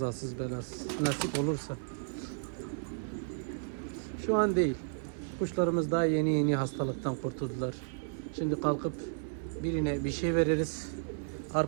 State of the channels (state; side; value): silent; left; 56 dB below the other